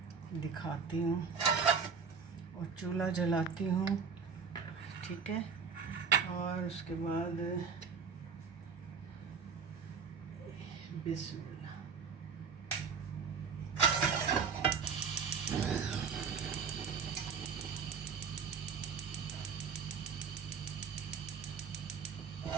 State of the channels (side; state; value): left; quieter; 5.9 dB